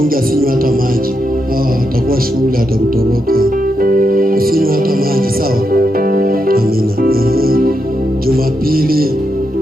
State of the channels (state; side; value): normal; both; correlation 0.83